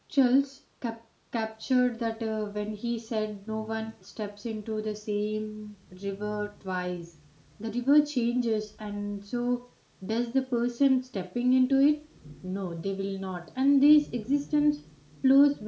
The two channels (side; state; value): both; identical; correlation 1.00